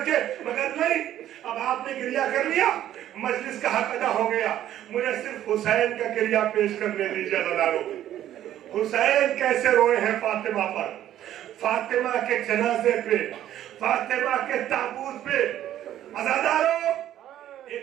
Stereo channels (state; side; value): quieter; left; 12.1 dB